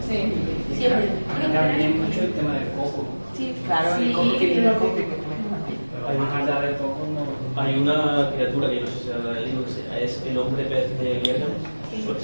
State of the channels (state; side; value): inverted; both; correlation -1.00